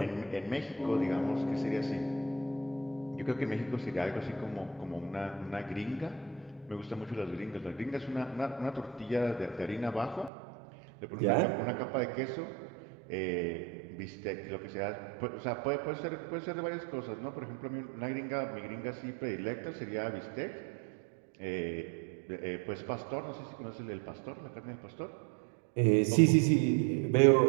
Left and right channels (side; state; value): left; drops out; at 10.3 s